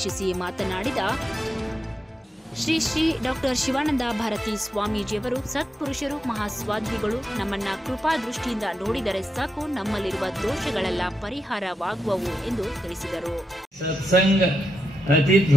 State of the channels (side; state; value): both; normal; correlation 0.86